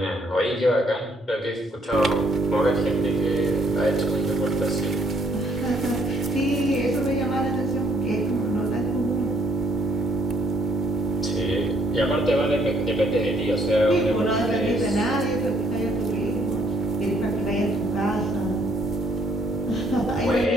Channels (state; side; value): normal; both; correlation 0.68